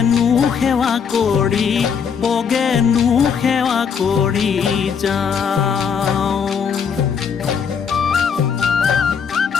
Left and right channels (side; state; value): right; quieter; 6.7 dB